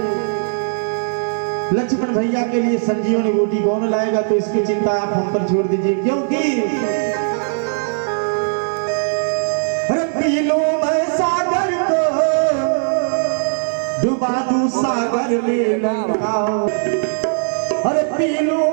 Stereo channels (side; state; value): left; silent; 67 dB below the other